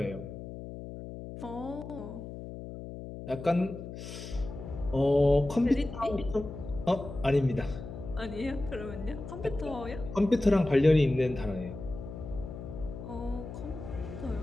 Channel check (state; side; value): noise; left; hum, 10 dB below the sound